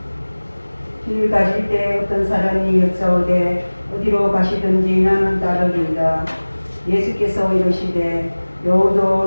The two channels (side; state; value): both; inverted; correlation -1.00